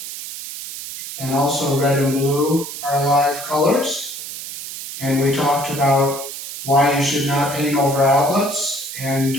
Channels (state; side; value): noise; right; hiss, 9 dB below the sound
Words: And also red and blue are live colors. And we talked about why you should not paint over outlets